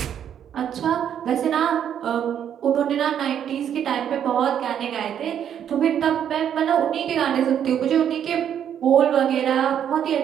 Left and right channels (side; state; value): left; quieter; 9.3 dB